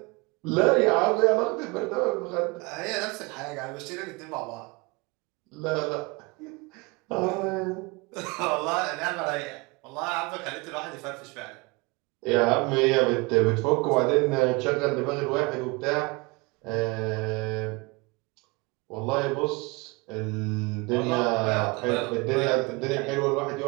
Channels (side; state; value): left; quieter; 26.6 dB